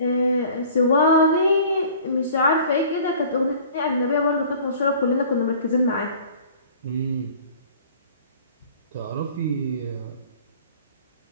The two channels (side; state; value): both; inverted; correlation -0.48